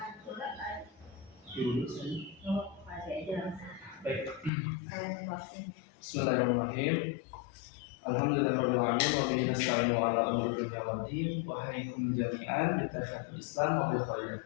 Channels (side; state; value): right; drops out; at 4.5 s